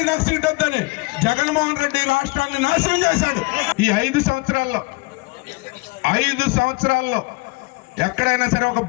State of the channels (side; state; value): right; quieter; 26.4 dB